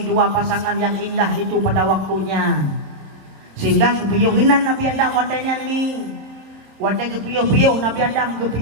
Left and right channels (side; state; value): left; late; 27 ms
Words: dua pasangan yang indah itu pada waktunya. Sehingga kepiyuhinan Nabi Adam wadanya ni. Wadai kepiyuh Nabi Adam